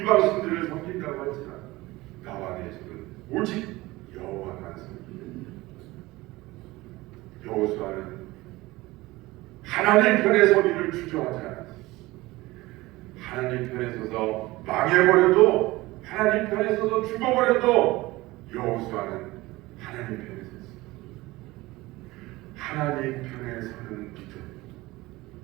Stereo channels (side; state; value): left; quieter; 19.9 dB